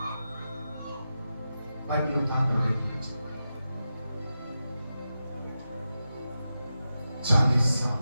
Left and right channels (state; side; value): inverted; both; correlation -0.90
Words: बाइबल उठा कर 40 साल